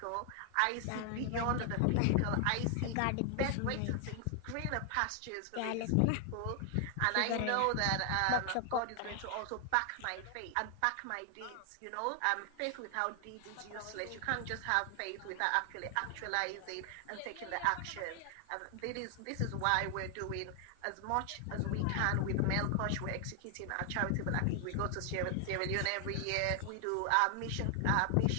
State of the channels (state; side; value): different; both; correlation 0.00